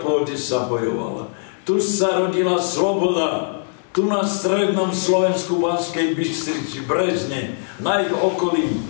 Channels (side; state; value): right; silent; digital silence